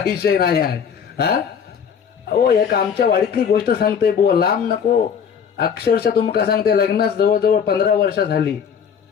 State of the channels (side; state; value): right; quieter; 7.3 dB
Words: विषय नाही आहे. हा हो, एक आमच्या वाडीतली गोष्ट सांगते बुवा, लांब नको, अक्षरशः तुमका सांगते, लग्नास जवळजवळ 15 वर्ष झाली